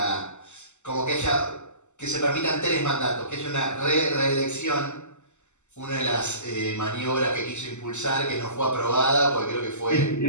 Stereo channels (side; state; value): right; late; 0.83 ms